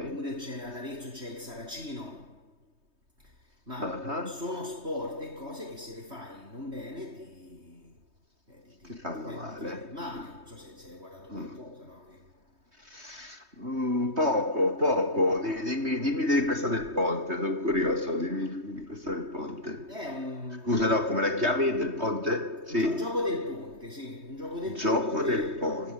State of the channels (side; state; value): left; late; 3.2 ms